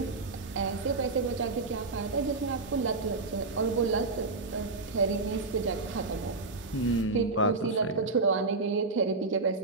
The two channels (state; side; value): quieter; left; 3.7 dB